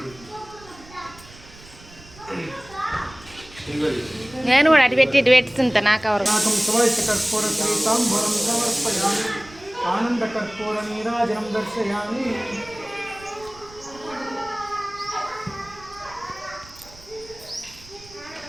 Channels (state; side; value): noise; right; rumble, 21 dB below the sound